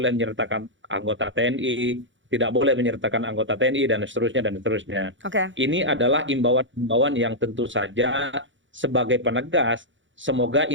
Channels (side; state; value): left; late; 0.55 ms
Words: menyertakan anggota TNI, tidak boleh menyertakan anggota TNI dan seterusnya dan seterusnya. Oke. Ini adalah imbauan-imbauan yang tentu saja sebagai penegas, semoga